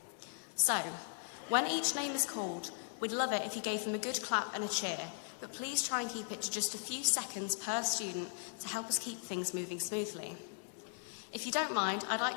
So, when each name is called, we'd love it if you gave them a good clap and a cheer, but please try and keep it to just a few seconds per student to help us keep things moving smoothly. If you don't mind, I'd like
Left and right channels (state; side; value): silent; right; 52 dB below the other